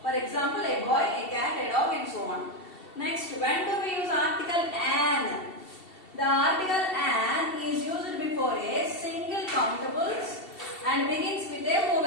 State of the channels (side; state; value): right; late; 2.7 ms